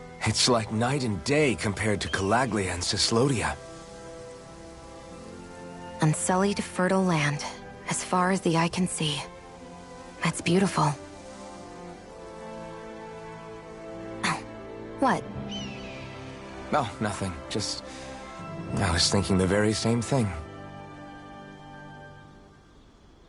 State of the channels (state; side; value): identical; both; correlation 1.00